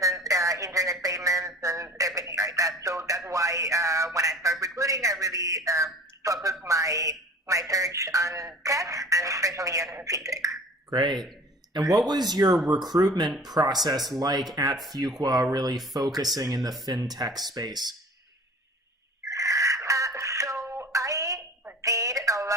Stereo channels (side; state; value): both; normal; correlation 0.43